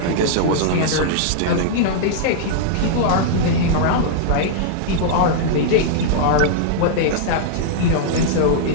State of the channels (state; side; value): different; both; correlation -0.01